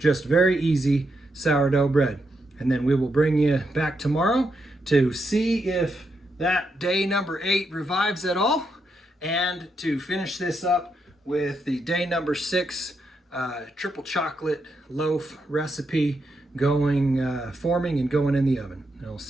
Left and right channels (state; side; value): normal; both; correlation 0.81